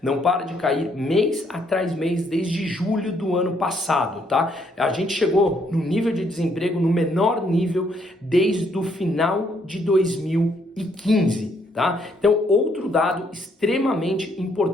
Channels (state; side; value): normal; both; correlation 0.71